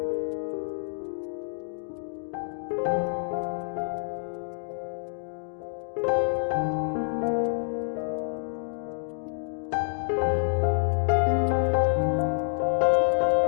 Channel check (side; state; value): right; silent; digital silence